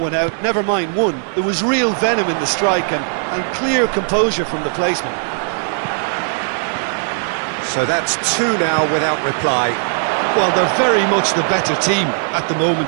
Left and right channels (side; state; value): left; silent; digital silence